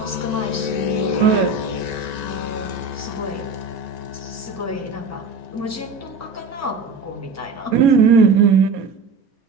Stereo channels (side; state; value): left; quieter; 3.9 dB